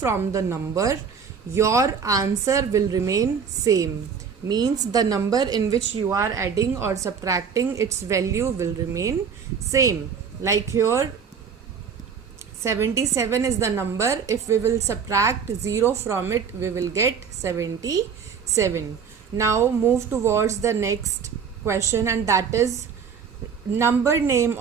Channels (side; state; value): left; quieter; 6.5 dB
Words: the number, your answer will remain same. Means the number in which you are adding or subtracting, its value will remain same. Like here 77 is the number, if we will subtract 0 from it we will get 77. Now move towards the next question, and that is number name